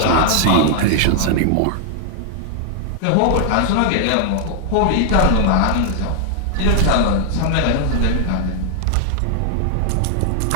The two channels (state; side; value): different; both; correlation 0.00